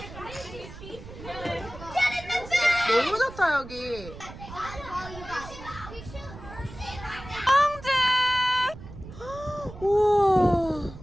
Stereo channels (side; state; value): right; noise; rumble, 14 dB below the sound